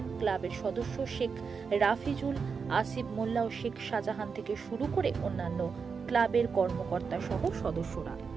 ক্লাবের সদস্য শেখ রাফিজুল, আসিফ মোল্লা ও শেখ শাহজাহান থেকে শুরু করে অন্যান্য ক্লাবের কর্মকর্তা সহ সদস্যরা।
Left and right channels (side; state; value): left; quieter; 5.6 dB